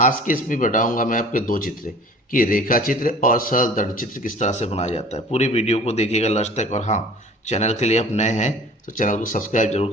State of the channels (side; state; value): both; normal; correlation 0.46